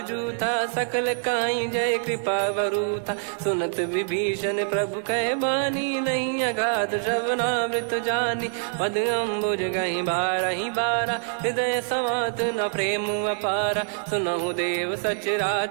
जूथा सकल काई जय कृपा वरूथा सुनत विभीषण प्रभु कह बानी नहीं अगाध श्रवणामृत जानी पद अम्बुज गहि बारहि बारा हृदय समात न प्रेम अपारा सुनहु देव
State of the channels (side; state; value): left; silent; digital silence